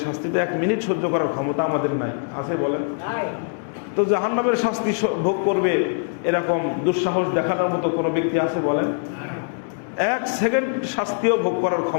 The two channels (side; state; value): right; silent; digital silence